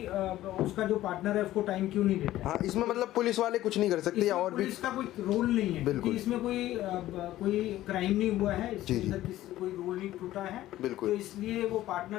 जो पार्टनर है उसको टाइम क्यों नहीं देता है। हाँ, इसमें मतलब पुलिस वाले कुछ नहीं कर सकते या और भी पुलिस का कोई रोल नहीं है, बिल्कुल। इसमें कोई क्राइम नहीं हुआ है, इसके अंदर कोई रूल नहीं टूटा है, बिल्कुल। तो इसलिए वो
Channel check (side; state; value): right; quieter; 14.7 dB